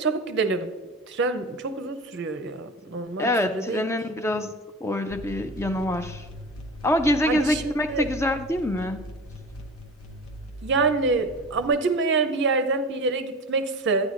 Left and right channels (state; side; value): normal; both; correlation 0.33